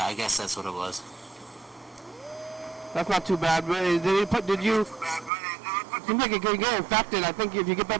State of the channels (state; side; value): drops out; left; at 5.3 s